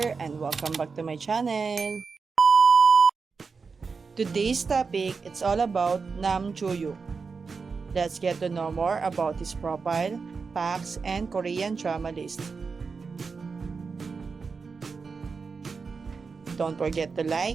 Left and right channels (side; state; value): left; quieter; 4.9 dB